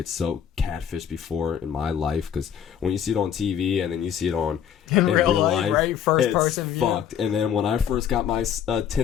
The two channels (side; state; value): right; quieter; 8.8 dB